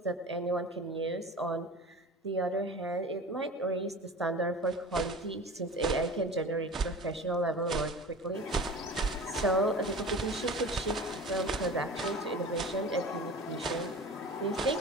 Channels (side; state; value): both; normal; correlation 0.37